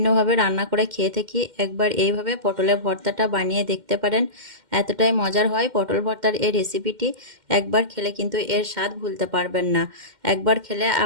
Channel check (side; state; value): left; late; 2.1 ms